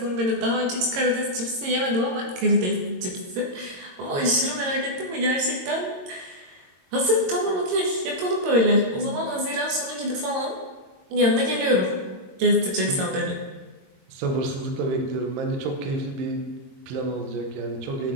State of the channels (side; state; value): left; late; 22 ms